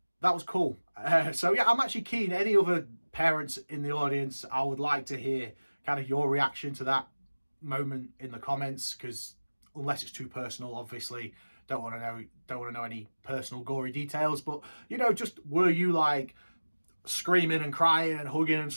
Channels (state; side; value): inverted; both; correlation -1.00